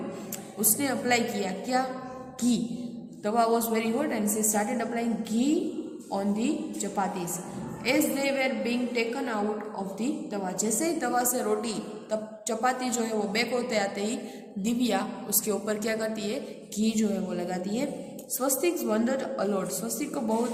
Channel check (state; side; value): identical; both; correlation 1.00